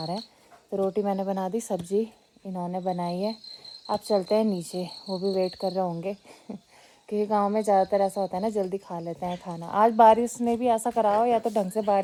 रहे हैं। तो रोटी मैंने बना दी, सब्जी इन्होंने बनाई है। अब चलते हैं नीचे, वो भी वेट कर रहे होंगे क्योंकि गांव में ज़्यादातर ऐसा होता है ना, जल्दी खा लेते हैं खाना। आज बारिश ने भी ऐसा करा हो, या तो ढंग से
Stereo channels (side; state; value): both; identical; correlation 1.00